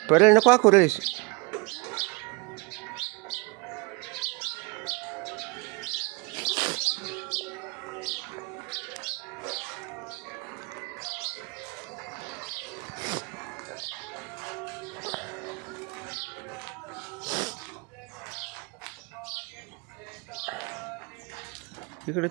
पर्याय नको करूस. इकडे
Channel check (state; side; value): quieter; left; 28.1 dB